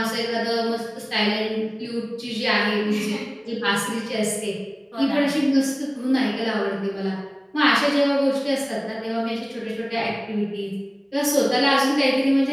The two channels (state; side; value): identical; both; correlation 1.00